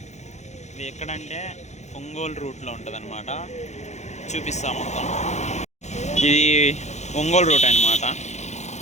ఇది ఎక్కడంటే ఒంగోలు రూట్లో ఉంటుంది అనమాట. చూపిస్తాం మొత్తం. ఇది ఒంగోలు రూట్ అనమాట.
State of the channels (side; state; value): right; late; 0.33 ms